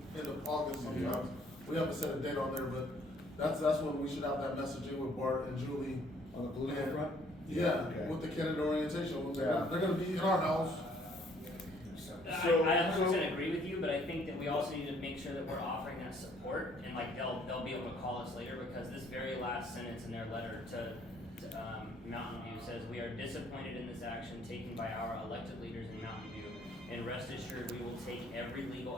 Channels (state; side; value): normal; both; correlation 0.62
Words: end of August sometimes. We haven't set a date on there, but that's when we should have that messaging with Bart and Julie. On the political front? Yeah, Okay. with the candidate orientation. Yeah. They're gonna be in our house. I 100% agree with you, but I think that we also need to make sure that we're offering that support, and like they'll be able to call us later, because this very last sentence in their letter to Mountain View says, "We are disappointed in this action taken by our elected leaders in Mountain View, and rest assured we will take every